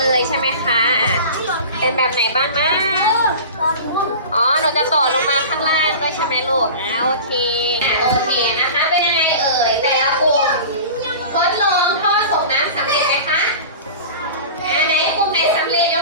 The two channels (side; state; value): both; inverted; correlation -0.35